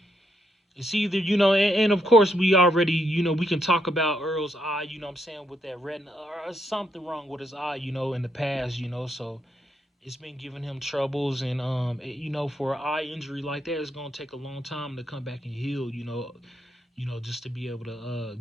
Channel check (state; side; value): normal; both; correlation 0.77